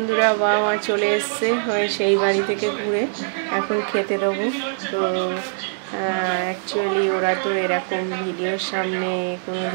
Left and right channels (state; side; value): silent; left; 64 dB below the other